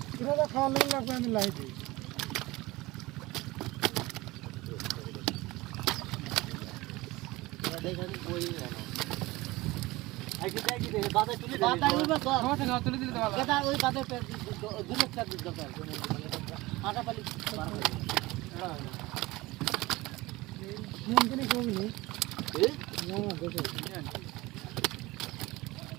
খাওয়া লাগবে আমি লাই দিই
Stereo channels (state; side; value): quieter; left; 20.3 dB